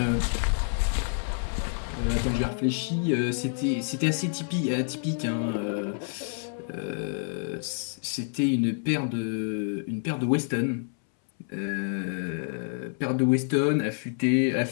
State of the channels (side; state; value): right; silent; 59 dB below the other